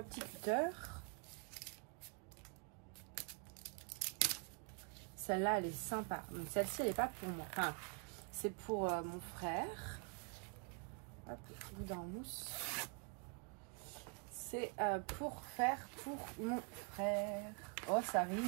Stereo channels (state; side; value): quieter; left; 36.3 dB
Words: cutter. Celle-là, elle est sympa. Donc, celle-ci, elle n'est pas pour moi. Enfin, c'est pour mon frère. Hop, boudin en mousse. C'est pour faire pour mon frère. Oh, ça